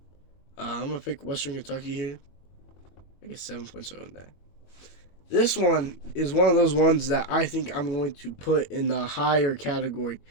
I'm going to pick Western Kentucky here. I guess 7 points on that. This one is one of those ones that I think I'm going to put in the higher category.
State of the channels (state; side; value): late; right; 22 ms